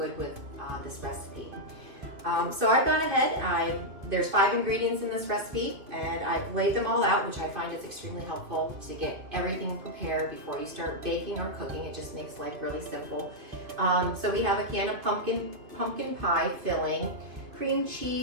with this recipe. So I've gone ahead, there's 5 ingredients in this recipe, and I've laid them all out, which I find is extremely helpful to get everything prepared before you start baking or cooking. It just makes life really simple. So we have a can of pumpkin pie filling, cream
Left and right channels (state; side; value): late; left; 2.5 ms